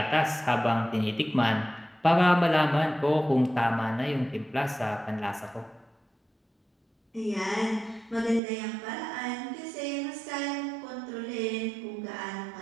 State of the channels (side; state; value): left; drops out; at 8.4 s